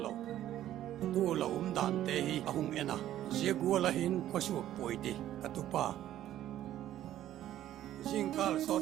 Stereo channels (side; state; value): left; quieter; 12.6 dB